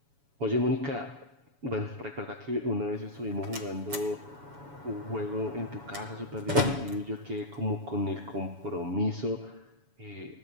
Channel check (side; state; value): left; late; 7.1 ms